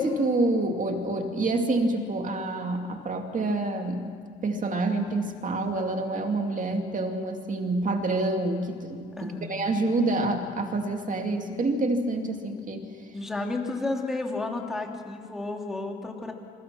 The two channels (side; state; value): both; normal; correlation 0.58